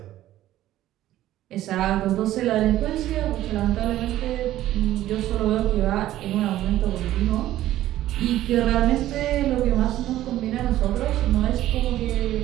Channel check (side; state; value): left; quieter; 13.9 dB